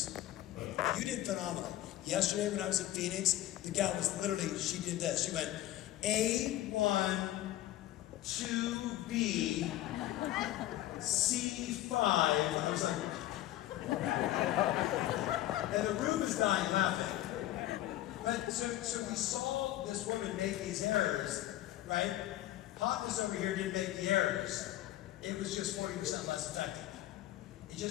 You did phenomenal. Yesterday when I was in Phoenix, the gal was literally, she did this. She went, A1, 2B, C5, and I was like, and the room is dying laughing. But so we saw this woman make these errors, right? Hotness over here didn't make the errors. It was just 40% less effective. It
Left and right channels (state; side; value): quieter; right; 14.6 dB